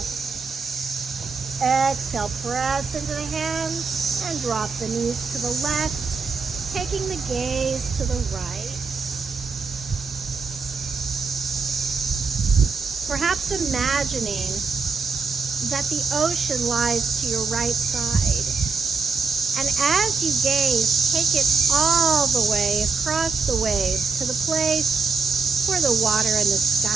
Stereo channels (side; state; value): left; quieter; 4.6 dB